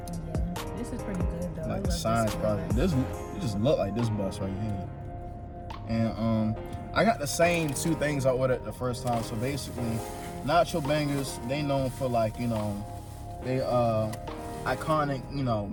This is pretty good though. Like the science product. This it just look like this bus right here. And I got the same two things I ordered the first time. So basically, Nacho Bangers, they known for like, you know, they iconic, you know,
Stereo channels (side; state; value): both; identical; correlation 1.00